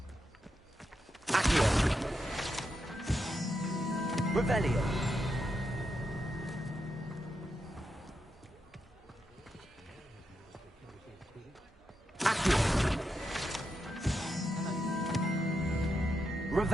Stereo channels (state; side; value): normal; both; correlation 0.85